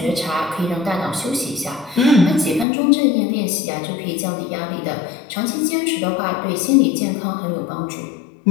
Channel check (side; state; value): right; drops out; at 2.7 s